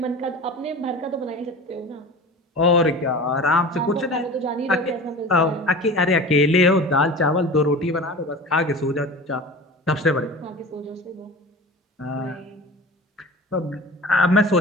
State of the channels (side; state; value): both; normal; correlation 0.36